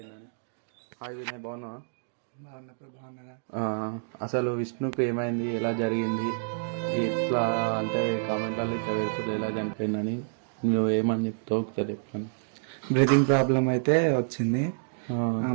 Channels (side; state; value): left; silent; digital silence